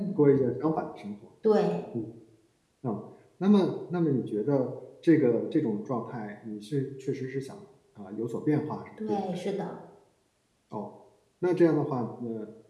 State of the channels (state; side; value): identical; both; correlation 1.00